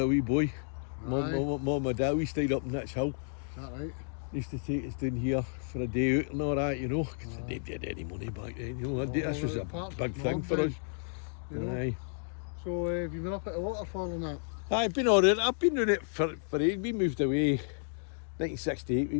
a wee boy. Mum and dad, we stayed up in Nitch Hill. Is that right? Used to take us down here for a day out and all that, you know, because they didn't have any money back then, you know. This was a big thing for us. You know? Aye. So have you been up at the waterfall and that? I've been alright. I've been doing it for ages. We moved away 1968, we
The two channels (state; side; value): silent; right; digital silence